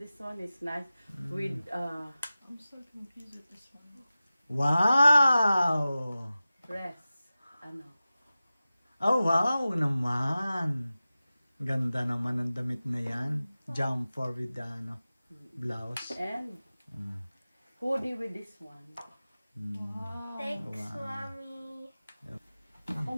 one is nice. With, I'm so confused with this one. Wow! dress. Ano? Oh, wow naman. Ganda naman ang damit na yan. Jumper with the ano, blouse. And hoodie with this one. Wow. Thanks, Mommy. Ako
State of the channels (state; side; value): inverted; both; correlation -0.95